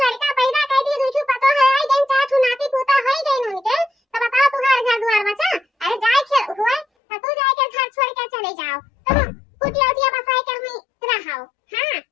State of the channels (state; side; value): drops out; right; at 6.9 s